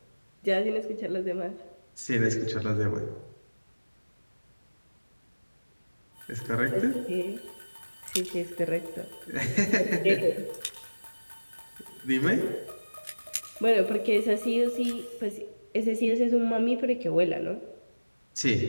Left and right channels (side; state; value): both; inverted; correlation -1.00